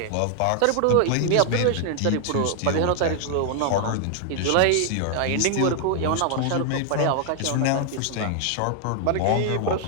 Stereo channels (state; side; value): different; both; correlation 0.00